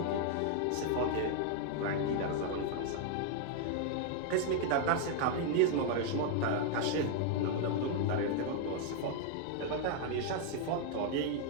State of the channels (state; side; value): different; both; correlation 0.00